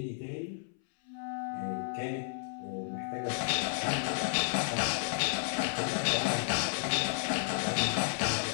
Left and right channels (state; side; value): silent; right; 56 dB below the other